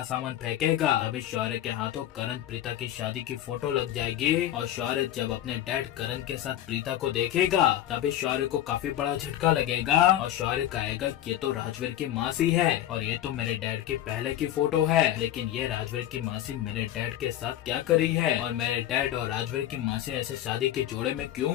सामान फेंकेगा। तभी शौर्य के हाथों करण प्रीता की शादी की फोटो लग जाएगी और शौर्य जब अपने डैड करण के साथ प्रीता को देखेगा तभी शौर्य को काफी बड़ा झटका लगेगा और शौर्य कहेगा ये तो राजवीर की मासी है और ये तो मेरे डैड की पहले की फोटो है, लेकिन ये राजवीर की मासी मेरे डैड के साथ क्या करी है और मेरे डैड और राजवीर की मासी ऐसे शादी के जोड़े में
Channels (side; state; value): right; quieter; 12.4 dB